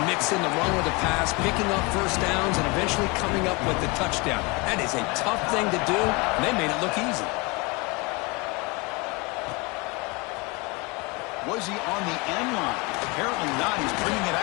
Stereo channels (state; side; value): quieter; right; 26.7 dB